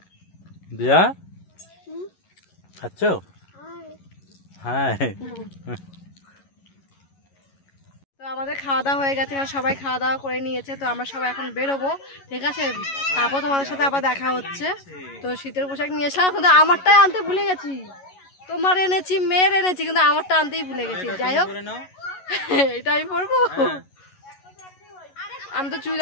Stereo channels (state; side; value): late; right; 11 ms